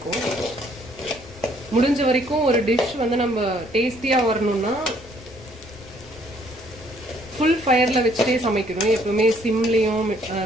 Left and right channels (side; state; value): left; noise; rumble, 20 dB below the sound